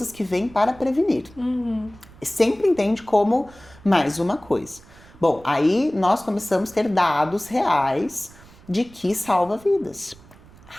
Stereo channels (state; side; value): noise; right; rumble, 23 dB below the sound